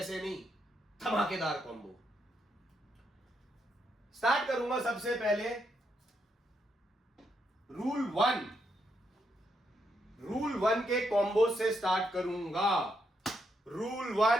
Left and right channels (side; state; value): both; normal; correlation 0.79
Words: नहीं, धमाकेदार कॉम्बो। स्टार्ट करूंगा सबसे पहले रूल वन के कॉम्बो से स्टार्ट करूंगा। Rule